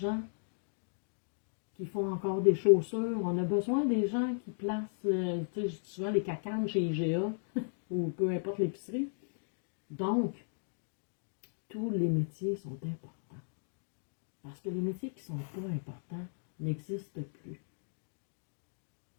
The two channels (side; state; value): right; silent; digital silence